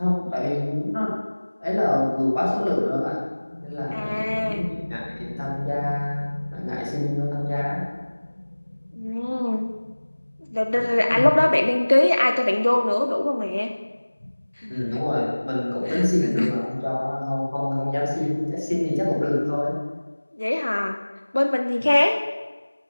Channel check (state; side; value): inverted; both; correlation -1.00